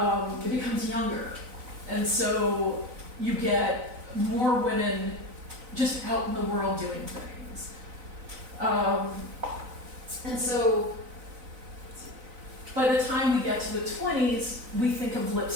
It becomes younger. And so you get more women just out in the world doing things. And so by the time we get to the 20s, we think of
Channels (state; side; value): late; left; 4.0 ms